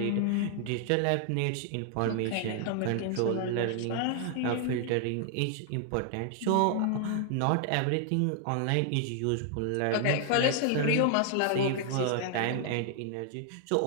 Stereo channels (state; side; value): different; both; correlation 0.00